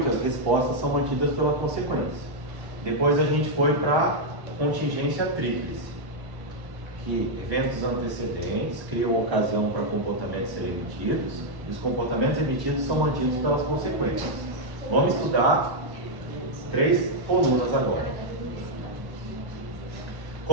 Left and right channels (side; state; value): left; late; 1.1 ms